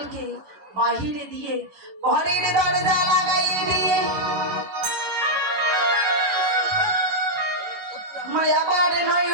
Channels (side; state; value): left; late; 11 ms